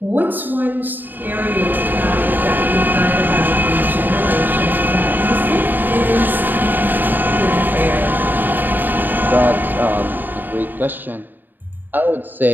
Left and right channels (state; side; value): late; left; 0.090 ms